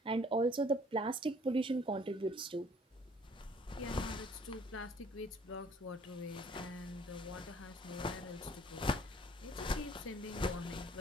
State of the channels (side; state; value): both; normal; correlation 0.58